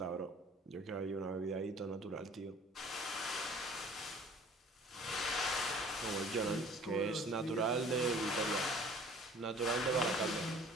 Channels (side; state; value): both; normal; correlation 0.50